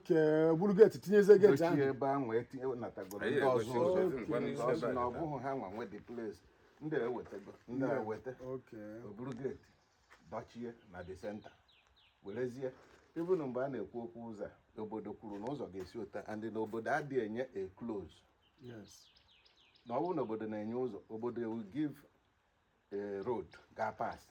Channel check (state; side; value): identical; both; correlation 1.00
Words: buru gate tinyeze gate dochie ahụ. ebe ahụ etinye natagoro ndị Anyị ọzọ egosi ụzọ ụzọ, ngwa n'isi because ebe na a. ọ bụghị ha nwa nwe the place ndị ewetego ndị eweta Okay. o buru gate dochie na the center werezie even mgbe a na-ekwu okwu ụzọ a, obodo kwuru na ụzọ ga-esi ụta and na obodo adịghị enye a close Yes. na ọ bụrụ na obodo na-enye ụzọ obodo will give a road ga pass